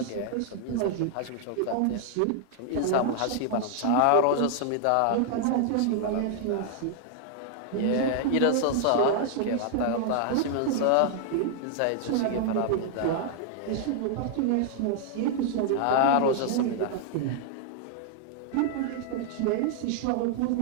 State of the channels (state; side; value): different; both; correlation 0.00